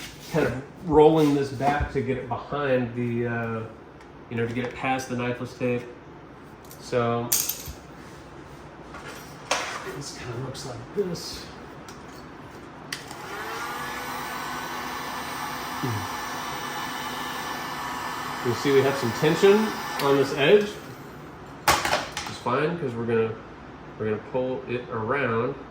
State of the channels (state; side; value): identical; both; correlation 1.00